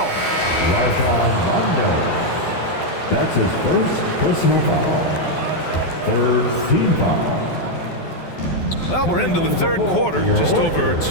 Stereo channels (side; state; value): right; late; 12 ms